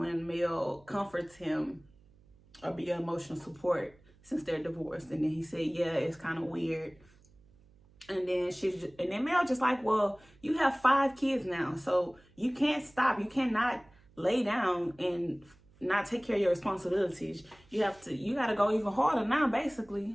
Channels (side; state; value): right; noise; hum, 29 dB below the sound